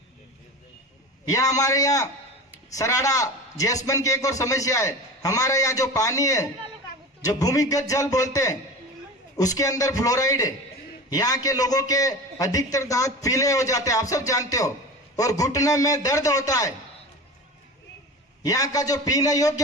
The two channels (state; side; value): normal; both; correlation 0.32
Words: या हमारे यहाँ सराड़ा, जैसमन की एक और समस्या है। हमारे यहाँ जो पानी है, जो भूमिगत जल बोलते हैं, उसके अंदर फ्लोराइड है। यहाँ के लोगों के अधिकतर दांत पीले हो जाते हैं, आप सब जानते हो, और घुटने में दर्द होता है। यहाँ का जो पीने